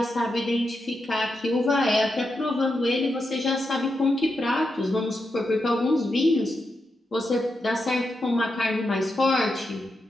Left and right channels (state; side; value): normal; both; correlation 0.86